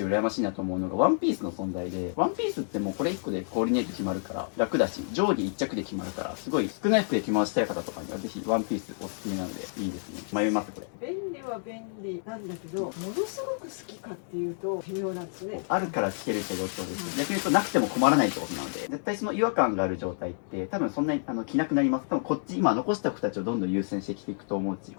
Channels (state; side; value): silent; right; digital silence